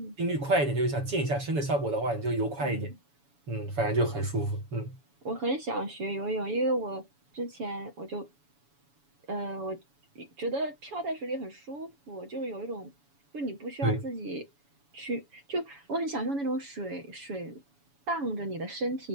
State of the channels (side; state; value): left; late; 7.1 ms